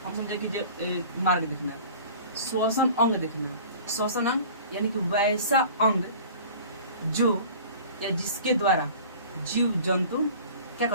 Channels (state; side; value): inverted; both; correlation -0.43